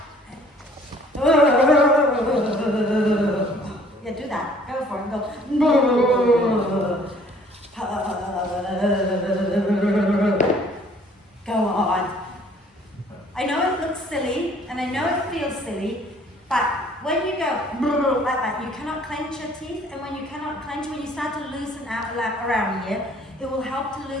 Yeah, do that. Go for it. Go. Go on. I know it looks silly, and I know it feels silly, but when you go like that, you cannot clench your teeth, and when you cannot clench, when you start to loosen out around here, it will help to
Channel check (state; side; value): normal; both; correlation 0.57